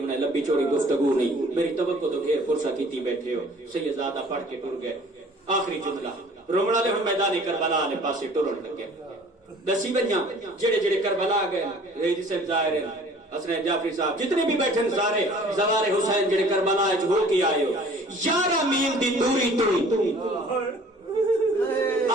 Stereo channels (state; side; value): normal; both; correlation 0.51